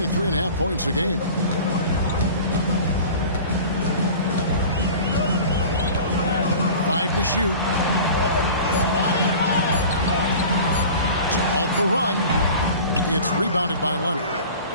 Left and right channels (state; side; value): inverted; both; correlation -0.39